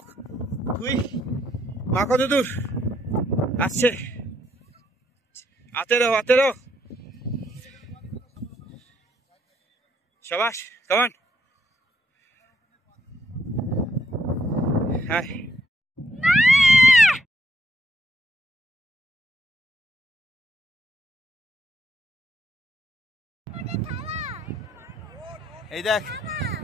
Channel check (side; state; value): both; normal; correlation 0.73